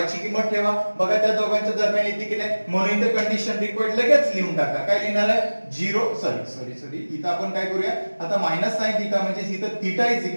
किंमत ठेवा, बघा त्या दोघांच्या दरम्यान येते की नाही, म्हणून इथे कंडिशन रिक्वायर्ड लगेच लिहून टाका. काय लिहिणार आहे 0 सॉरी इथं आपण काय करूया आता मायनस साइन थीटा म्हणजे इथं थीटा इज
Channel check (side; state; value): both; inverted; correlation -1.00